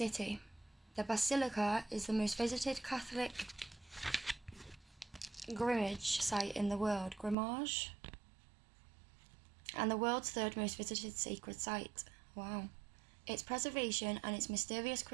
The Basilica is the most visited Catholic Grimmage site in the world. Grimmage? And the world's 3rd most visited sacred site. Wow. Its preservation and its mysterious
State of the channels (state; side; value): drops out; left; at 7.4 s